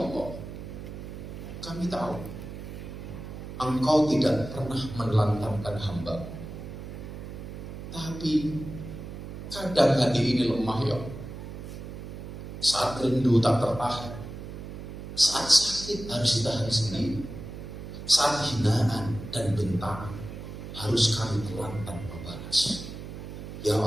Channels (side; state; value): right; noise; hum, 10 dB below the sound